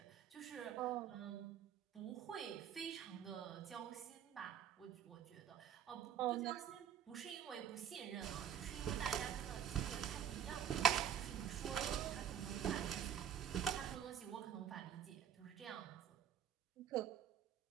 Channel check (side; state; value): left; quieter; 9.1 dB